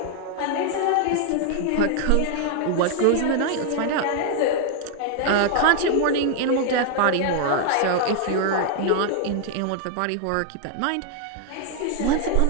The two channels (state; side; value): different; both; correlation 0.00